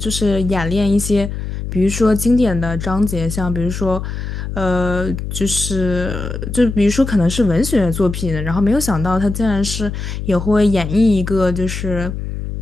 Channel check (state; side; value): noise; left; hum, 6 dB below the sound